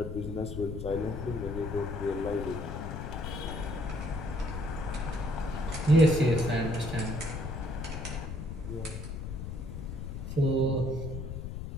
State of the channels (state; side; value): noise; left; rumble, 6 dB below the sound